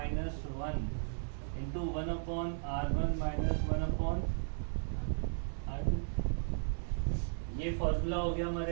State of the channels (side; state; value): left; silent; 54 dB below the other